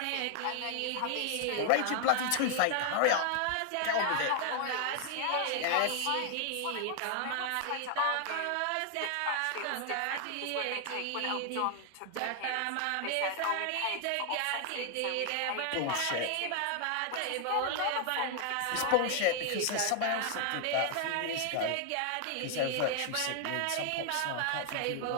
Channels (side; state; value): both; different; correlation 0.00